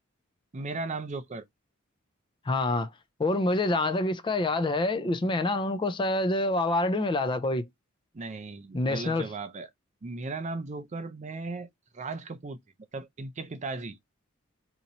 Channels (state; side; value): normal; both; correlation 0.42